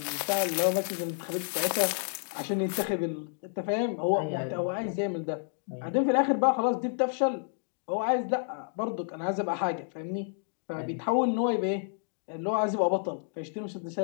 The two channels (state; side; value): silent; right; digital silence